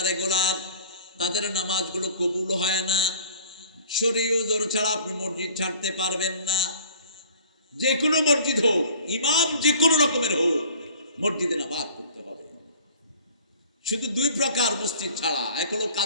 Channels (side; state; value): both; inverted; correlation -0.48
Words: রেগুলার তাদের নামাজগুলো কবুল হয় না। শরীয়ত ওযর ছাড়া আপনি মসজিদ ছাড়তে পারবেন না। যে কোনো মসজিদ হোক, ইমাম যে কোনো রকমের হোক, মসজিদে নামাজ পড়তে হবে। শুধু 2 প্রকার মসজিদ ছাড়া, এক হলো